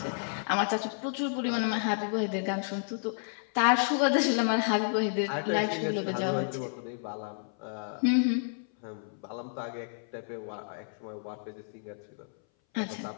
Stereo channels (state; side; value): silent; right; 57 dB below the other